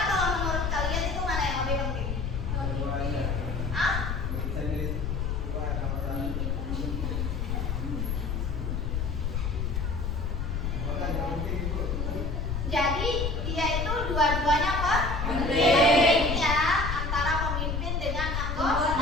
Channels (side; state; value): left; noise; rumble, 1 dB below the sound